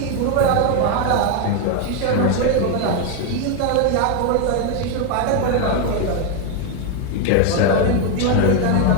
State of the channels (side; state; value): both; different; correlation 0.01